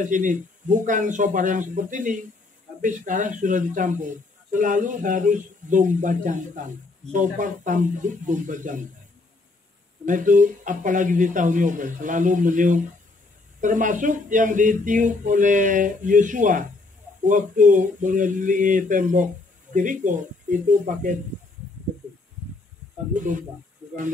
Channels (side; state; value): right; quieter; 3.4 dB